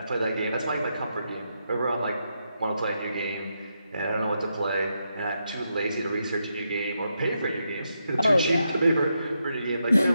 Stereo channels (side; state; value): both; inverted; correlation -0.83